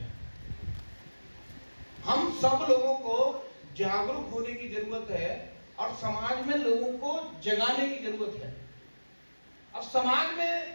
हम सब लोगों को जागरूक होने की जरूरत है और समाज में लोगों को जगाने की जरूरत है। अब समाज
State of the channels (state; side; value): inverted; both; correlation -1.00